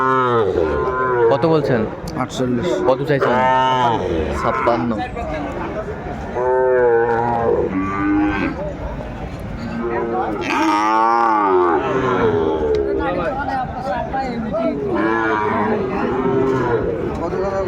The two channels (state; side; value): identical; both; correlation 1.00